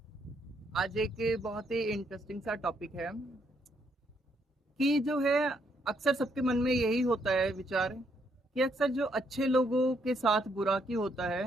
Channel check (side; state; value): both; normal; correlation 0.73